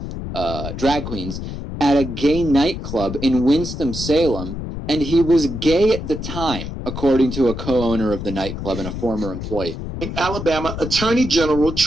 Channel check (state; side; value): noise; left; rumble, 7 dB below the sound